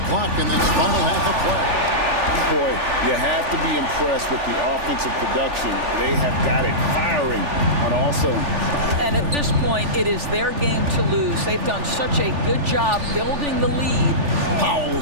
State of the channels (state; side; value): late; left; 3.4 ms